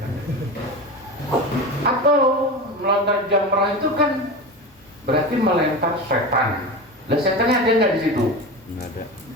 Atau melontar jamrah itu kan berarti melempar setan. Lah setannya ada nggak di situ? Nggak ada.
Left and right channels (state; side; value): normal; both; correlation 0.25